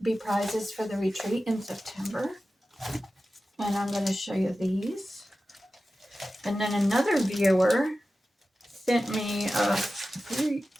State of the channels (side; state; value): both; normal; correlation 0.94